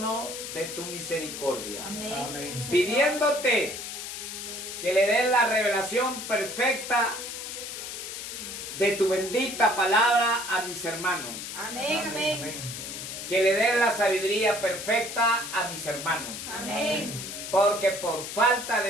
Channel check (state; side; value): noise; left; hiss, 8 dB below the sound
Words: de tu misericordia, Amén. pidiéndote que le des la revelación perfecta de tu bendita palabra a mis hermanos. Amén. Amén. Que le des la sabiduría perfecta a mis hermanos. Amén. Porque por falta